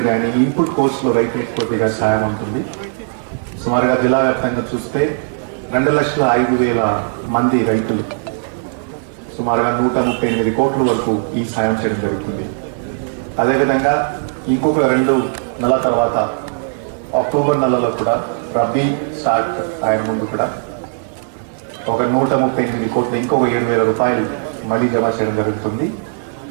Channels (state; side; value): silent; left; digital silence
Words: కానీ, ఇన్పుట్ కోస్ట్లో రైతులకు కొద్దిగా సాయం ఉంటుంది. సుమారుగా జిల్లా వ్యాప్తంగా చూస్తే 2,05,000 మంది రైతులు సుమారుగా 138 కోట్ల వరకు ఈ సాయం చేయడం జరుగుతుంది. అదేవిధంగా ఇంకొక 2 నెలల తర్వాత అక్టోబర్ నెలలో కూడా రబీ స్టార్ట్ ఆయన ముందు కూడా ఒక 138 కోట్లు ఇంకొక 7,000 రూపాయలు మళ్ళీ జమ చేయడం జరుగుతుంది.